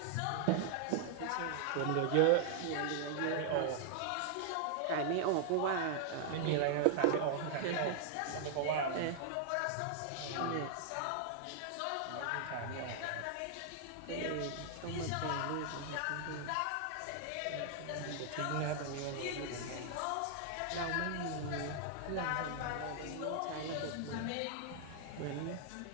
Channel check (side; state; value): both; different; correlation -0.01